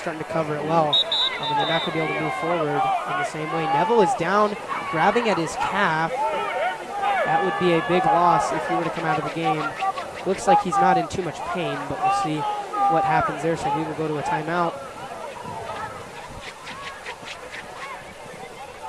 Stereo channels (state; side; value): identical; both; correlation 1.00